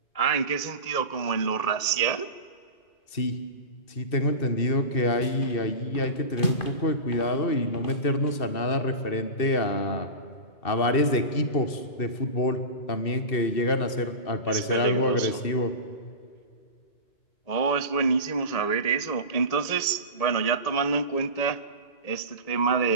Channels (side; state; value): right; late; 2.7 ms